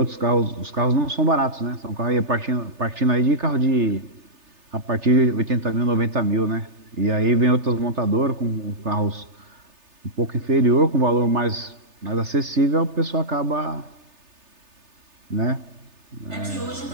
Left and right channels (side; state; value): left; late; 3.3 ms